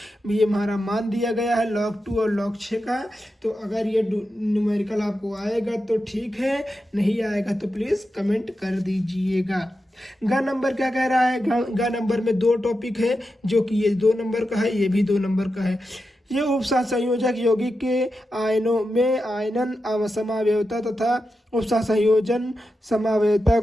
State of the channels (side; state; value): both; normal; correlation 0.89